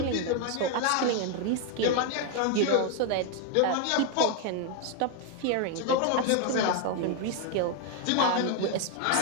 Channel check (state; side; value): different; both; correlation 0.01